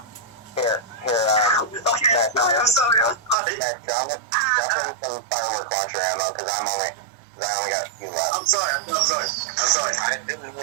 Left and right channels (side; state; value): left; drops out; at 3.4 s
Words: Here, Okay, Matt, I'm sorry. Matt, drop in some firework launcher ammo, because I only got a few left. I'm sorry. I didn't